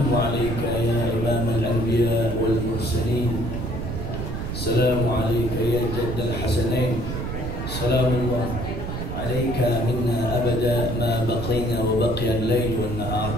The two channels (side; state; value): right; noise; rumble, 4 dB below the sound